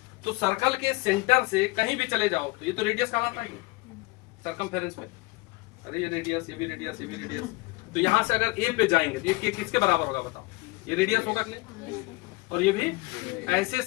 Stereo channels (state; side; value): quieter; right; 23.8 dB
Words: तो सर्कल के सेंटर से कहीं भी चले जाओ तो ये तो रेडियस कहलाता है सर्कमफेरेंस में, अरे ये रेडियस, ये भी रेडियस, ये भी रेडियस, तो यहां से अगर ए पे जाएंगे तो ये किसके बराबर होगा बताओ, ये रेडियस होगा कि नहीं, और ये भी ऐसे